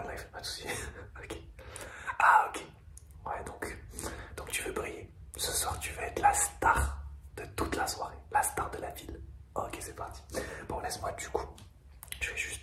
pas de soucis. Ok. Ah ok. Ouais, donc tu veux briller. Ce soir, tu veux être la star de toute la soirée, la star de la ville. Ok, c'est parti. Bon, laisse-moi du coup. Je vais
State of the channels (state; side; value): identical; both; correlation 1.00